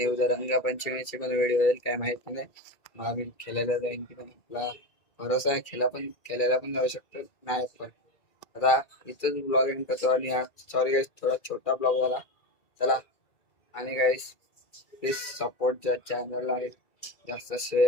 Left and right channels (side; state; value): right; late; 2.3 ms